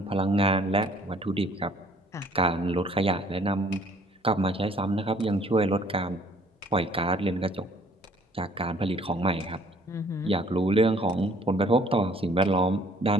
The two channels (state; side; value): normal; both; correlation 0.58